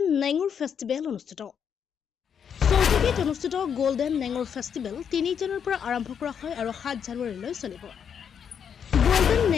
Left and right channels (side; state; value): right; quieter; 7.6 dB